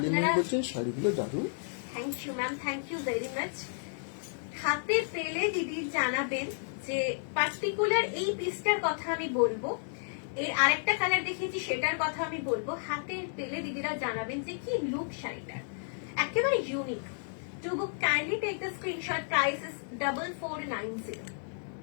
ম্যাম বলছেন শাড়িগুলো দারুণ। Thank you ma'am, thank you very much. হাতে পেলে দিদি জানাবেন যে পার্টিকুলার এই পিসটার কথা আমি বলবো, এর আরেকটা কালার দেখিয়েছি সেটার কথা আমি বলবো। হাতে পেলে দিদিরা জানাবেন যে কি লুক শাড়িটার, একেবারে unique. To book, kindly take the screenshot. Price is 4490.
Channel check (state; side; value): silent; right; digital silence